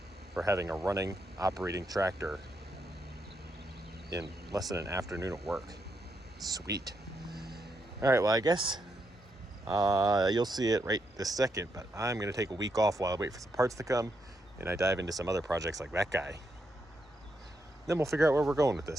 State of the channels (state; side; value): normal; both; correlation 0.81